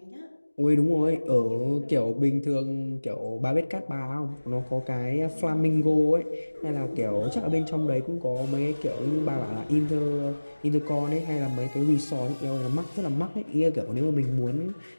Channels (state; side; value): inverted; both; correlation -1.00